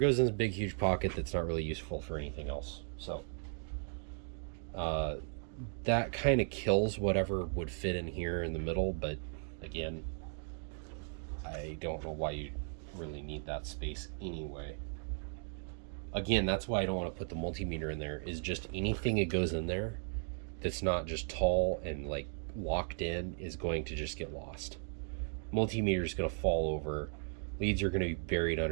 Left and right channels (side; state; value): left; silent; 53 dB below the other